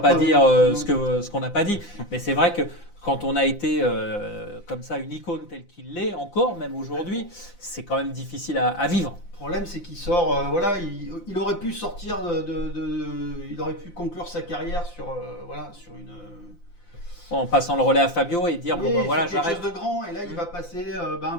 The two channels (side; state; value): right; late; 9.8 ms